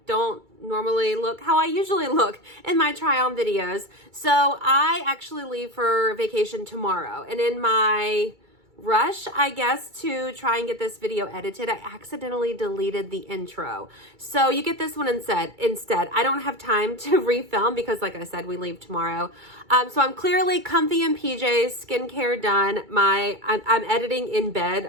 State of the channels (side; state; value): left; late; 2.3 ms